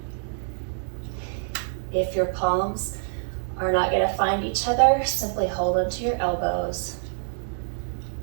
If your palms are not going to find each other, simply hold onto your elbows.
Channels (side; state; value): left; silent; 61 dB below the other